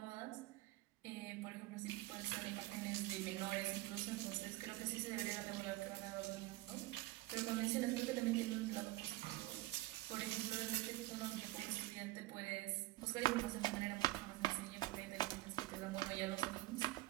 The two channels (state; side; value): quieter; left; 18.5 dB